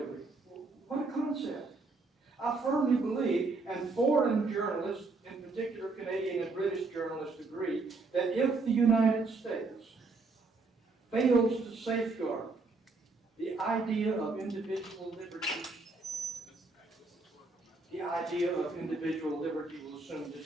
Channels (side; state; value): left; quieter; 3.7 dB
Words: What a concept. I firmly believe, and foreign journalists, in particular Canadian and British journalists, agree, that if the United States fails to safeguard the idea of individual liberty, the idea of individual liberty will soon